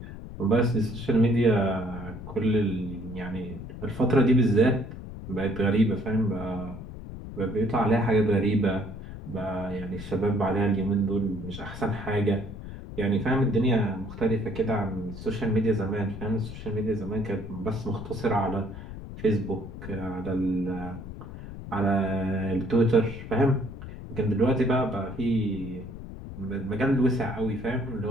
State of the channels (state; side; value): noise; left; rumble, 11 dB below the sound